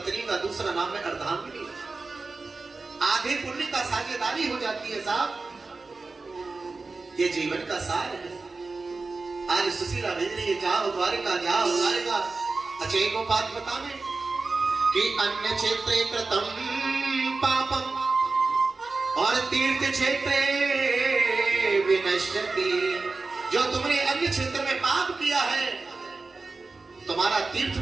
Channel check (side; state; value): left; quieter; 3.8 dB